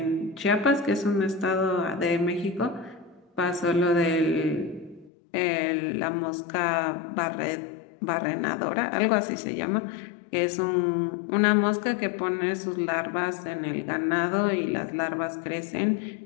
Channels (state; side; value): drops out; right; at 5.1 s